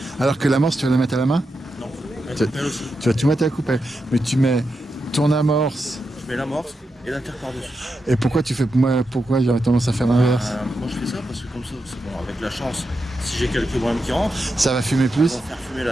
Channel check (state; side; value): normal; both; correlation 0.87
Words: Alors que l'amorce, tu vas la mettre à la main? Non, Tu- elle aussi. Tu vas tout mettre à la coupelle. Mais tu mets ton amorce. Je mets l'amorce et la terre par-dessus. Et pourquoi j'aurais tendance à faire l'inverse? Moi, je fais ça parce que comme ça, c'est bon, avec la chance, si j'ai quelques brins qui rentrent, Ça va fumer on plus? va faire fumer